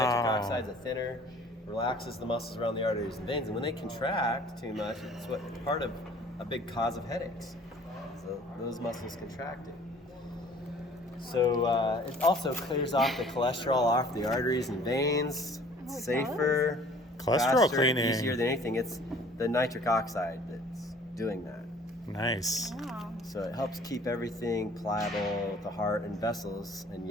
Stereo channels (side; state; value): both; normal; correlation 0.52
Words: oxide's a thinner, relaxes the muscles around the arteries and veins, and when they contract too much, it's what part of a big cause of headaches. So those muscles contracting. So it also clears off the cholesterol off the arteries and veins. It's Oh, it safer, Cholesterol faster, cleaning. easier than anything. It's the nitric oxide that's doing that. Nice. Wow. So it helps keep everything pliable, the heart and vessels, and